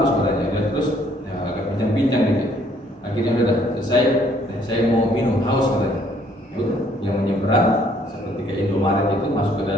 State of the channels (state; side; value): normal; both; correlation 0.63